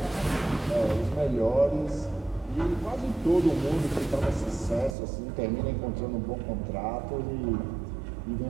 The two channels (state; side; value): drops out; left; at 5.0 s